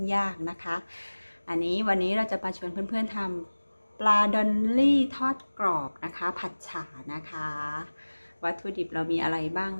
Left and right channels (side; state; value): both; inverted; correlation -1.00